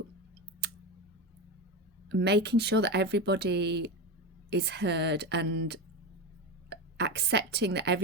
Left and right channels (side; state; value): both; normal; correlation 0.18